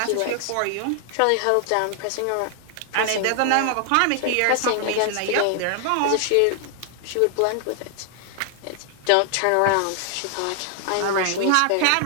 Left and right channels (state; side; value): different; both; correlation 0.00